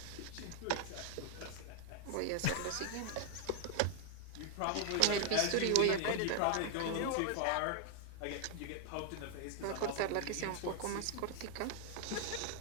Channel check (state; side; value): different; both; correlation 0.00